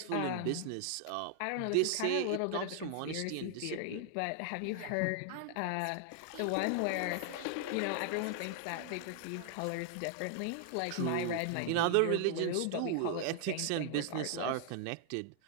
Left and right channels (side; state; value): both; different; correlation 0.00